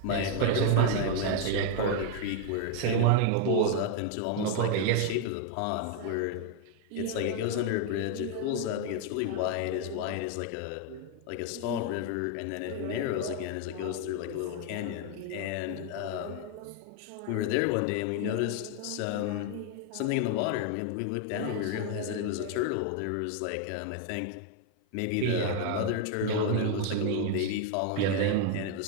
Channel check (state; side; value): different; both; correlation 0.00